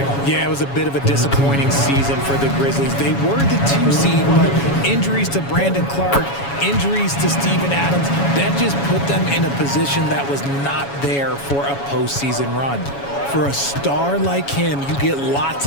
Yeah, it was a bit of a disappointing season for the Grizzlies. They were the 2 seed, but injuries to Brandon Clark, injuries to Steven Adams, that just put them in a position that was not there for a postseason run. For a star like him, you get lots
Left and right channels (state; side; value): late; right; 7.2 ms